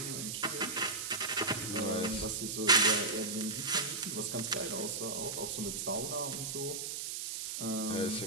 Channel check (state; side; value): noise; right; hiss, 4 dB below the sound